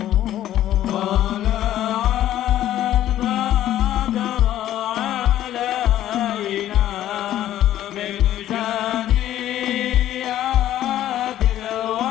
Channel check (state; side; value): quieter; right; 12.6 dB